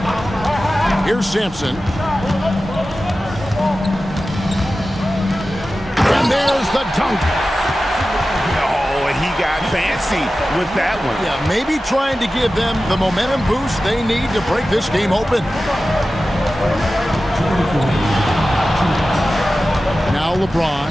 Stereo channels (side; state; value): both; normal; correlation 0.94